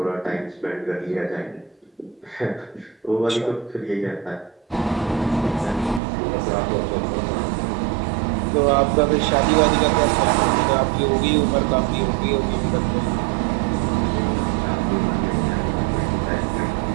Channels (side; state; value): left; drops out; at 6.0 s